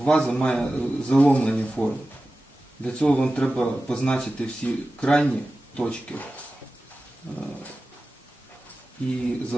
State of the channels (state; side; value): normal; both; correlation 0.95